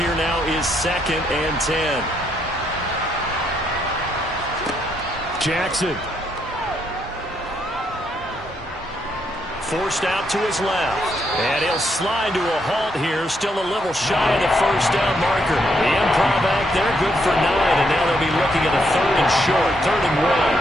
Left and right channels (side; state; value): both; normal; correlation 0.76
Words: now is 2nd and 10. Jackson. Forced out to his left. And he'll slide to a halt here, still a little shy of the first down marker. The improv act there, good for 9, and now they'll be looking at a 3rd and short, 3rd and